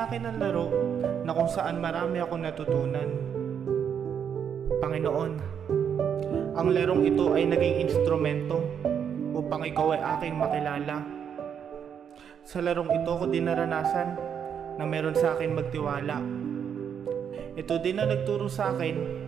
akin ang laro na kung saan marami akong natutunan. Panginoon, ang larong ito ay naging instrumento upang ikaw ay aking makilala. Sa larong ito ko din naranasan na meron sa akin magtiwala. Ito din ang nagturo sa akin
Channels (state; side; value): quieter; left; 7.9 dB